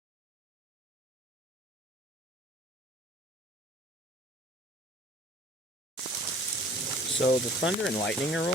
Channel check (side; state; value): both; normal; correlation 0.50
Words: So the thunder and lightning are